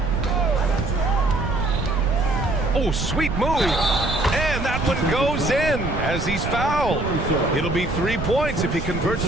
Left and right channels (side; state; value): right; noise; rumble, 5 dB below the sound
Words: Oh, sweet move. And that one goes in as he's fouled. It'll be 3 points if he converts